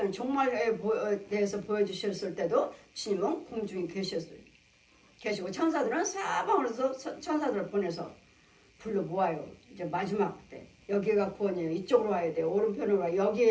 종말에 대해서 보여주셨을 때도 주님은 공중에 계시고 천사들은 사방으로서 천사들을 보내서 불러 모아요. 이제 마지막 때 여기가 구원이에요. 이쪽으로 와야 돼요. 오른편으로 와.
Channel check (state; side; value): identical; both; correlation 1.00